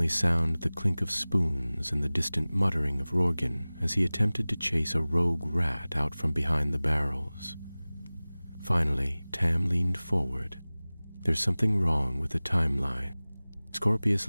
sound the clink of spoons and the distant muttering of Rorgan as he attempted to chase a rogue rat out from behind the barrels. Finally, Tam leaned forward. There's something wrong with the timeline. Scorpius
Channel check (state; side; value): inverted; both; correlation -0.99